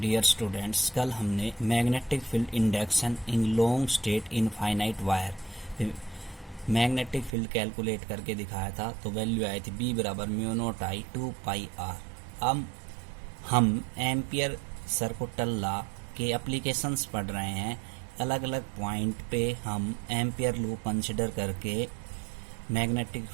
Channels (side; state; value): left; drops out; at 7.3 s